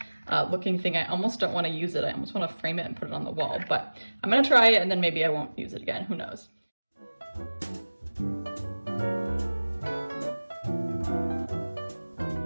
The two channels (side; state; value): both; inverted; correlation -1.00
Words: looking thing. I almost don't want to use it. I almost want to frame it and put it on the wall, but I'm gonna try it and then maybe I won't use it again, who knows.